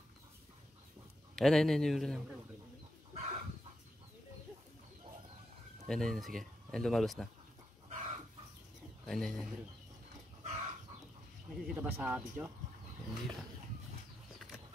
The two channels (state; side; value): normal; both; correlation 0.85